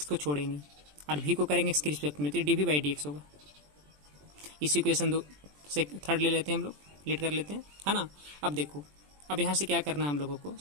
को छोड़ेंगे और भी को करेंगे एक्स के रिस्पेक्ट में, तो d v by d x होगा। इस इक्वेशन 2 से थर्ड ले लेते हैं हम लोग, लेट कर लेते हैं, है ना। अब देखो, अब यहाँ से क्या करना है हम लोगों को,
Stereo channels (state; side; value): late; left; 20 ms